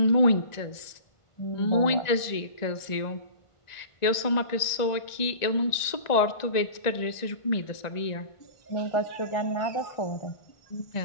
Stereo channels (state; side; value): late; right; 1.9 ms